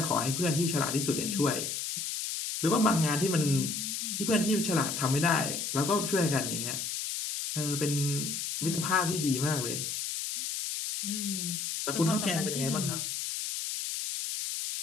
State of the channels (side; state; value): left; noise; hiss, 3 dB below the sound